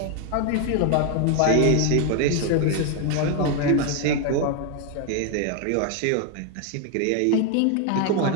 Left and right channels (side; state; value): both; different; correlation 0.01